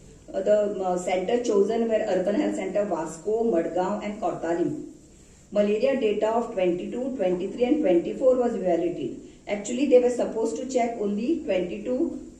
The center chosen were Urban Health Center Vasco, Madgaon and Kortalim. Malaria data of 22, 23 and 24 was validated. Actually, they were supposed to check only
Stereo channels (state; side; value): identical; both; correlation 1.00